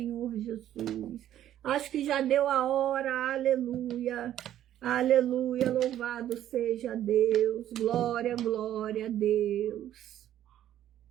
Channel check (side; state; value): left; quieter; 11.8 dB